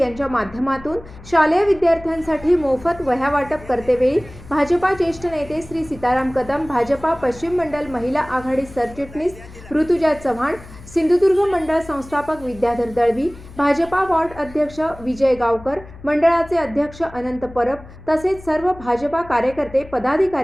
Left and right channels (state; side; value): noise; left; hum, 18 dB below the sound